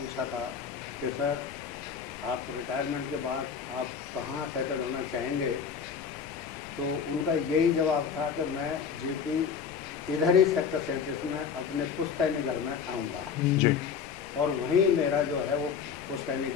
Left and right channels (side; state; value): right; quieter; 6.7 dB